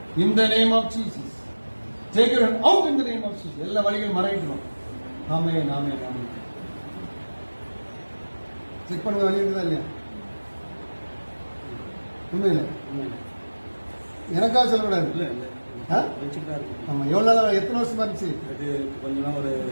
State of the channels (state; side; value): inverted; both; correlation -1.00